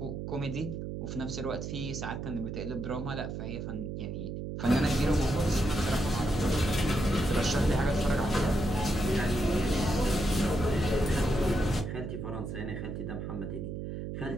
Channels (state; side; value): noise; right; hum, 5 dB below the sound